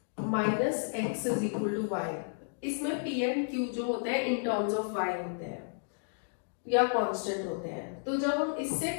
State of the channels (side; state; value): right; silent; digital silence